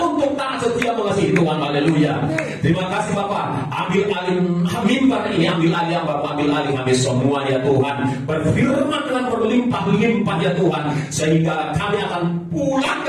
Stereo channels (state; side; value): identical; both; correlation 1.00